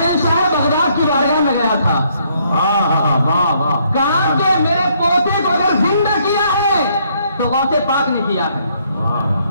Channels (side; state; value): both; inverted; correlation -0.69